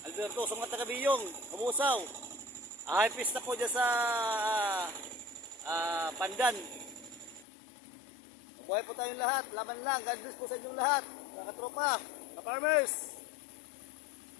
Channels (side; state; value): right; drops out; at 7.5 s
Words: Alberto sa mga taga-Biyong, Kamusaw. High pista po dyan sa Pandan. Mabuhay po tayong lahat. Laban lang. God bless po sa inyong lahat. Mga katropa, ka-farmers.